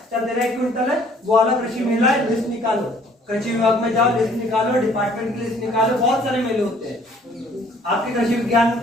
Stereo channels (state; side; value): normal; both; correlation 0.58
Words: चल तेरा 1 क्विंटल है, वो वाला कृषि मेला है, लिस्ट निकालो, कृषि विभाग में जाओ, लिस्ट निकालो, डिपार्टमेंट की लिस्ट निकालो। बहुत सारे मेले होते हैं, आपके कृषि विज्ञान